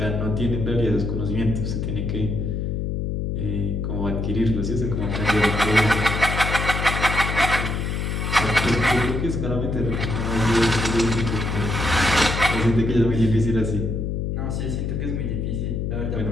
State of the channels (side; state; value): left; noise; hum, 1 dB below the sound